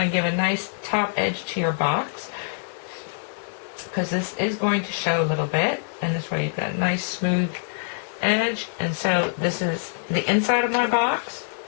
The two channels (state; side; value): silent; right; digital silence